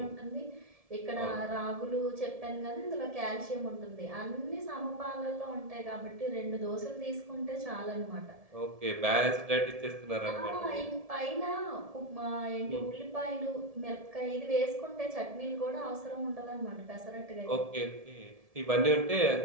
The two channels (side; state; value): left; late; 1.7 ms